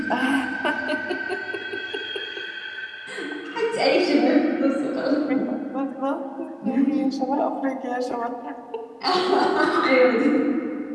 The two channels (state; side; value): identical; both; correlation 1.00